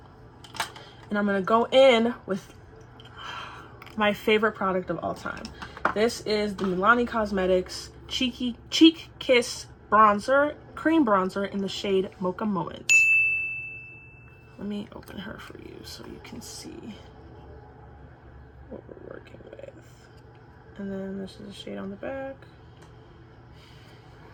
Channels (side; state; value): both; identical; correlation 1.00